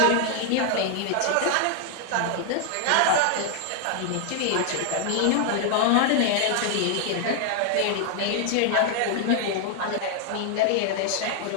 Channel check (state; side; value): different; both; correlation 0.00